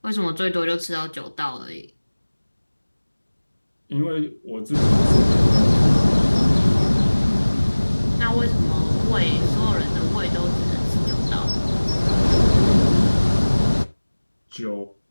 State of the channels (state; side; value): inverted; both; correlation -1.00